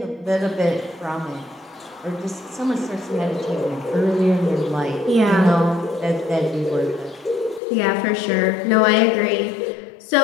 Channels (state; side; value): drops out; right; at 7.6 s